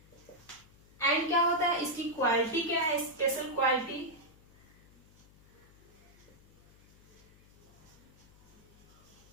एंड क्या होता है, इसकी क्वालिटी क्या है, स्पेशल क्वालिटी,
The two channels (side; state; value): left; noise; hum, 26 dB below the sound